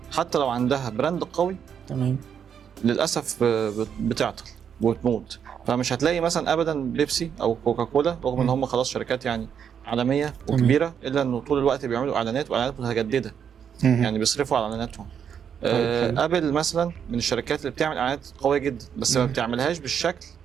حتى لو عندها براند قوي تمام. للاسف بتعطل وتموت. فمش هتلاقي مثلا ابدا بيبسي او كوكاكولا رغم ان هم خلاص شركات يعني عالميه وكبيره الا انه طول الوقت بيعملوا اعلانات واعلانات متجدده، يعني بيصرفوا على اعلاناتهم. ابل مثلا من الشركات اللي بتعمل اعلانات قويه جدا بس ما بتعملهاش بالشكل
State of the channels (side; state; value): left; quieter; 7.9 dB